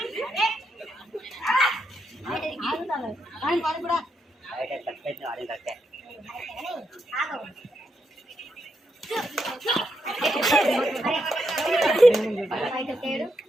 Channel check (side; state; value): both; normal; correlation 0.82